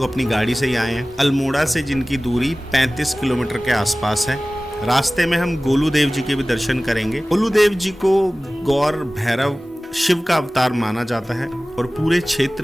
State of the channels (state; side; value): normal; both; correlation 0.98